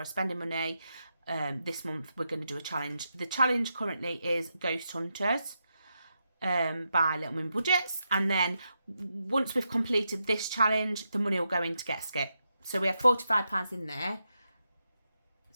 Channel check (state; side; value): inverted; both; correlation -0.85